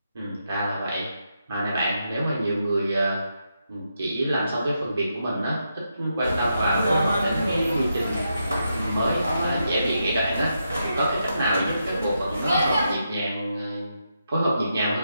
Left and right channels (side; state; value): both; inverted; correlation -0.83